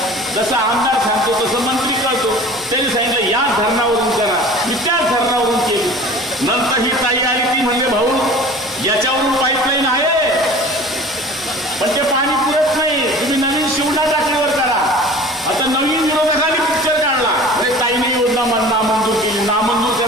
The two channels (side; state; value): both; normal; correlation 0.42